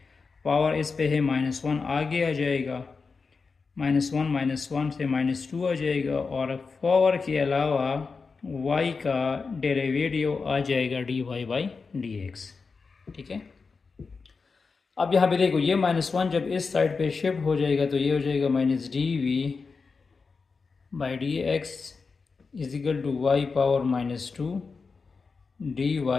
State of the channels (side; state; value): right; quieter; 4.7 dB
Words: पावर इस पे है -1, आगे आ जाएगा -1 से -2 आ जाएगा, और पावर के अलावा y का डेरिवेटिव आ जाएगा dy/dx। ठीक है, अब यहाँ पे देखो ये -1 जब इस साइड पे शिफ्ट हो जाएगा तो ये हो जाएगा -dv by D x is equal to y power -2 D